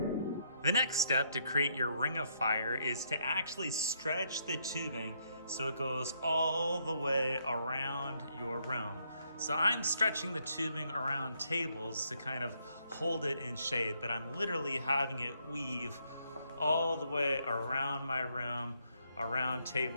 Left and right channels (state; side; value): inverted; both; correlation -0.73